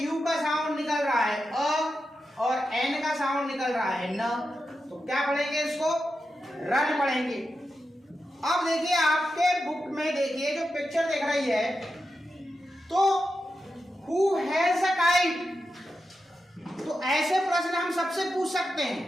यू का साउंड निकल रहा है अ और एन का साउंड निकल रहा है न। तो क्या पढ़ेंगे इसको? रन पढ़ेंगे। अब देखिए आपके बुक में देखिए जो पिक्चर दिख रही है, तो हु हैज अ काइट। तो ऐसे प्रश्न हम सबसे पूछ सकते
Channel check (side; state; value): both; normal; correlation 0.89